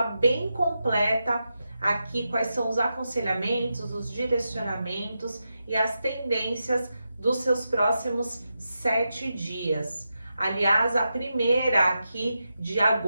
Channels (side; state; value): both; inverted; correlation -0.88